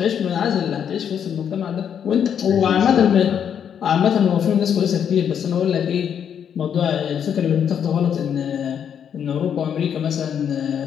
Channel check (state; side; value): quieter; right; 8.3 dB